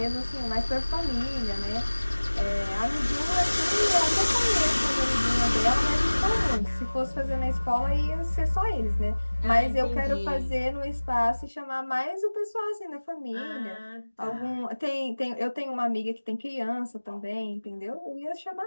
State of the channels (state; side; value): inverted; both; correlation -1.00